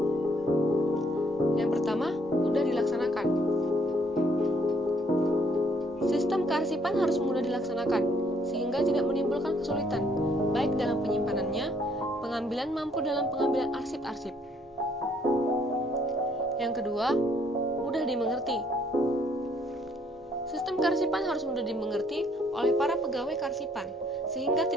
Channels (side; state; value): both; normal; correlation 0.66